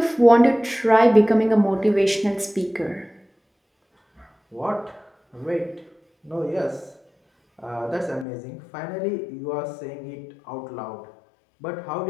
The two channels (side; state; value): right; drops out; at 8.2 s